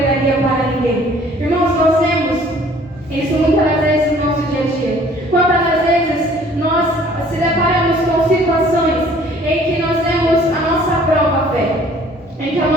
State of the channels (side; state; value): both; normal; correlation 0.55